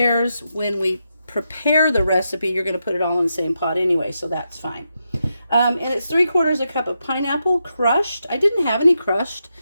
When we prepare the recipe, you're going to put it all in the same pot anyway, so that's fine. And it's 3/4 a cup of pineapple crushed. I didn't have any crushed.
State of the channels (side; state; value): both; inverted; correlation -0.85